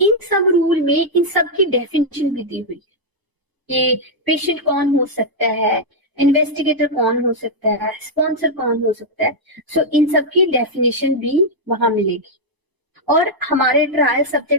सब रूल में इन सब की डेफिनेशन भी दी हुई है कि पेशेंट कौन हो सकता है, इन्वेस्टिगेटर कौन हो सकता है, स्पॉन्सर कौन हो सकता है। सो इन सब की डेफिनेशन भी वहां मिलेगी। और हमारे ट्रायल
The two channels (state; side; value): late; left; 1.0 ms